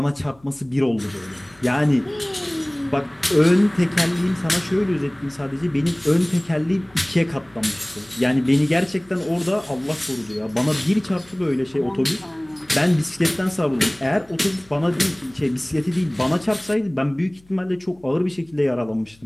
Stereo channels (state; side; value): noise; left; hum, 29 dB below the sound